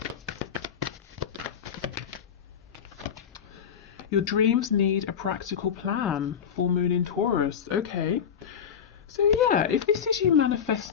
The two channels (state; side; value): quieter; right; 7.9 dB